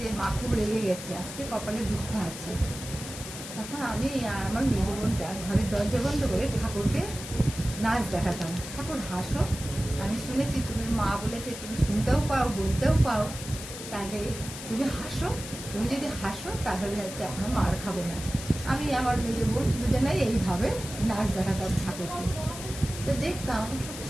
যে মা খুব রেগে গেছে, আজকে কপালে দুঃখ আছে। তখন আমি আর আমার মেজ বোনটা ঘরের দরজা বন্ধ করে ঠাকুরকে নাচ দেখাতাম, ঠাকুর হাসো, আমি শুনেছি তুমি মা বলেছে তুমি শুনতেও পাও, বলতেও পাও, তাহলে তুমি হাসো, তুমি যদি হাসো তাহলে হচ্ছে আমরা মার খাবো না। আমি আমার মেজ বোন দুজনেই এইভাবে নাচ দেখাতাম ঠাকুরকে। তো দেখতাম সত্যি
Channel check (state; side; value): noise; left; hiss, 10 dB below the sound